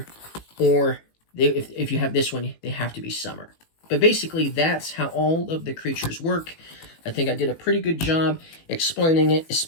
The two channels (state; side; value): late; right; 18 ms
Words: or if you have this one, they have to be summer. But basically, that's how all of the creatures work. I think I did a pretty good job explaining it,